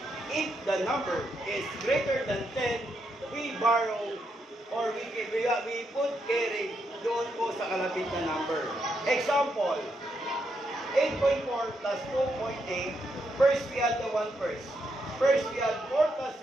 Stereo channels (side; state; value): both; normal; correlation 0.80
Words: If the number is greater than 10, we borrow or we put carry doon po sa kalapit na number. Example, 8.4 plus 2.8. First, we add the 1 first. First, we add 4 plus